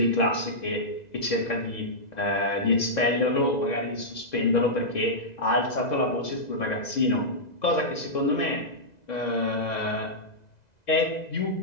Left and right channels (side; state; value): right; late; 2.0 ms